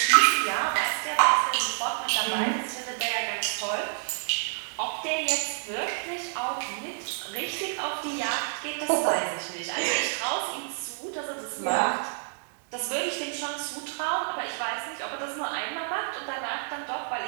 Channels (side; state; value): left; silent; 59 dB below the other